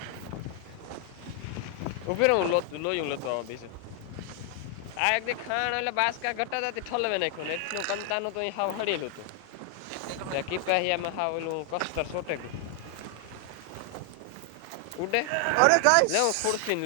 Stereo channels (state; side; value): different; both; correlation 0.00